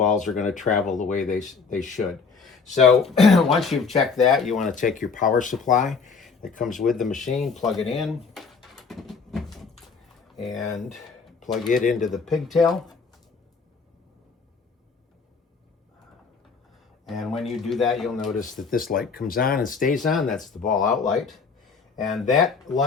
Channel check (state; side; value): quieter; right; 5.0 dB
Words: are going to travel the way they should. So once you've checked that, you want to take your power supply that comes with the machine, plug it in, and plug it into the pigtail. And when you do that, you'll notice that this light comes on and stays on. That's the ball out light. And that